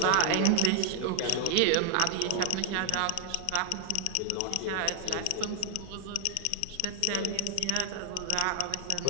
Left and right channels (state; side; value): different; both; correlation 0.00